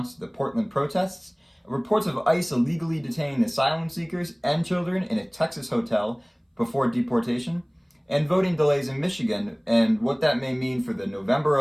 to the Portland protests, reports of ICE illegally detaining asylum seekers and children in a Texas hotel before deportation, and voting delays in Michigan and what that may mean for the November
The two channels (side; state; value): both; identical; correlation 1.00